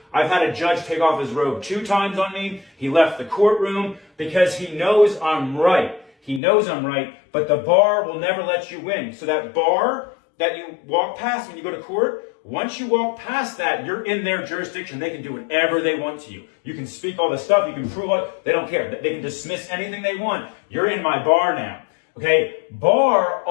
I've had a judge take off his robe 2 times on me. He left the courtroom because he knows I'm right. He knows I'm right, but the bar will never let you win. So that bar that you walk past when you go to court, once you walk past that, you're in their jurisdiction. They can do whatever they want to you. You can speak all the stuff. You can prove it. They don't care. They can dismiss anything they want. You're in my bar now. Okay? Bar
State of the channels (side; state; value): right; drops out; at 6.4 s